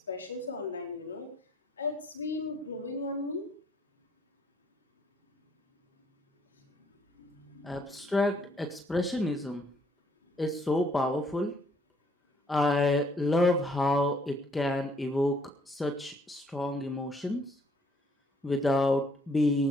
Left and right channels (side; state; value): both; normal; correlation 0.66